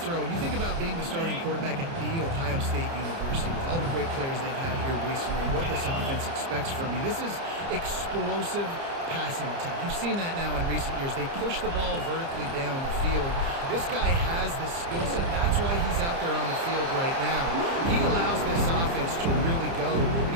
You think about being the starting quarterback at The Ohio State University with all the great players they've had here recently, what this offense expects from you. This is explosive passing attack. You've seen that now in recent years. They push the ball vertically down the field. This guy has the skill set. That's why he's out there on the field right now. He allows this offense to really go, and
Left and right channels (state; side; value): late; left; 30 ms